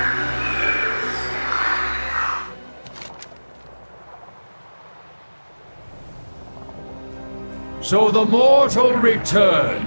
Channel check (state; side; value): inverted; both; correlation -1.00